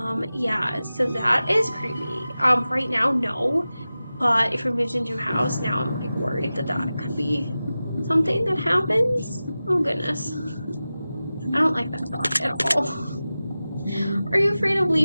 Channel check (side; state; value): both; inverted; correlation -0.95